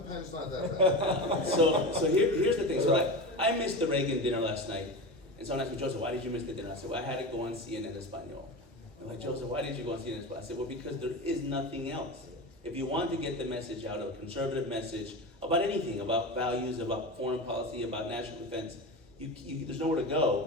pen's not that bad. So here's the thing. So like, I missed the Reagan dinner last night, and someone asked me, Joseph, why did you miss the dinner? I said, well, I had to go on CNN Espanol. They're like, Joseph, why did you go on CNN Espanol? I said, well, because there is nothing else. If you want to get the message out, a conservative message about anything, about values, about foreign policy, about national defense, there's nowhere to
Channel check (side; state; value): both; normal; correlation 0.25